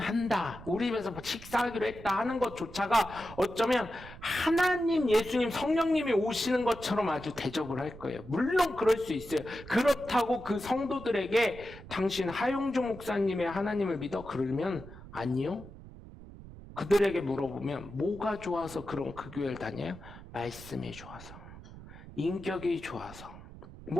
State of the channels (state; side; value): noise; right; rumble, 16 dB below the sound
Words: 우리 집에서 식사하기로 했다 하는 것조차가 어쩌면 하나님, 예수님, 성령님이 오시는 것처럼 아주 대접을 할 거예요. 물론 그럴 수 있어요. 그렇다고 그 성도들에게 당신 하영주 목사님의 하나님을 믿어? 그러면 아니요. 그들에게 물어보면 뭐가 좋아서 그런 그 교회를 다녀요? 말씀이 좋아서, 인격이 좋아서,